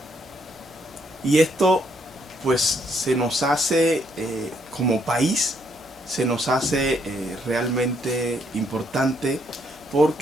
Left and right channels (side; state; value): both; normal; correlation 0.72